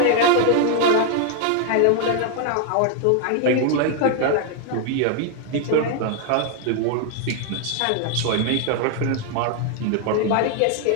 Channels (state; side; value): different; both; correlation 0.00